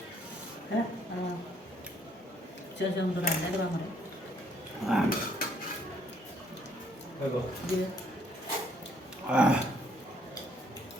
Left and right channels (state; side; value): normal; both; correlation 0.66